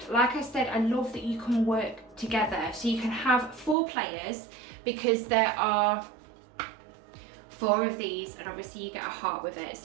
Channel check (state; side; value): drops out; left; at 3.8 s